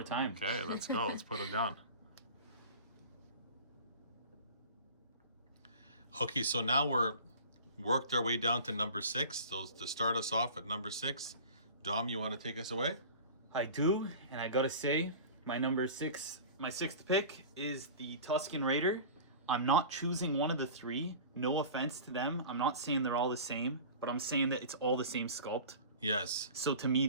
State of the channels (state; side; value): inverted; both; correlation -0.37